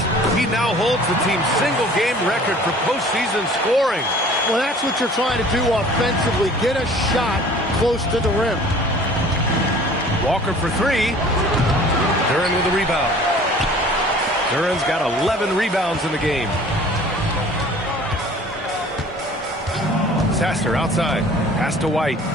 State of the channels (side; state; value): both; normal; correlation 0.48